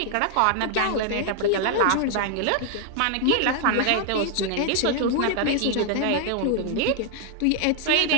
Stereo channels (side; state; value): both; different; correlation 0.00